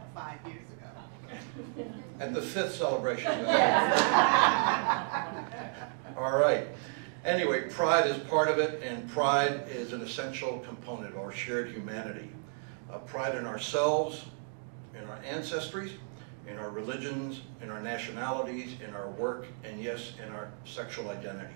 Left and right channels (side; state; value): left; silent; 56 dB below the other